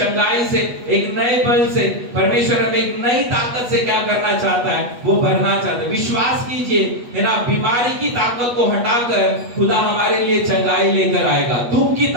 से, एक नए बल से, परमेश्वर हमें एक नई ताकत से क्या करना चाहता है, वो भरना चाहता है। विश्वास कीजिए, है ना, बीमारी की ताकत को हटाकर खुदा हमारे लिए चंगाई लेकर आएगा। दुख की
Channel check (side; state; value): left; late; 8.2 ms